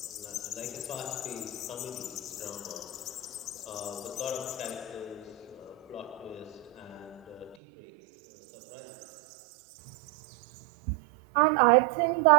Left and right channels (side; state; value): left; drops out; at 7.6 s